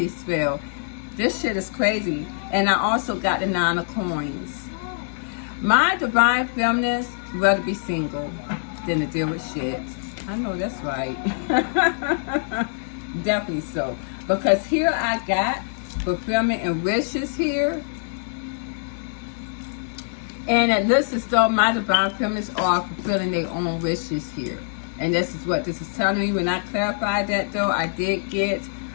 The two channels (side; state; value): right; silent; digital silence